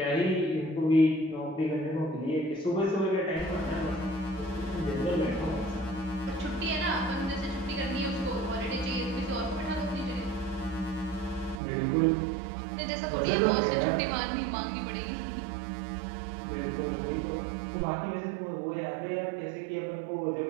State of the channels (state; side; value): drops out; left; at 11.6 s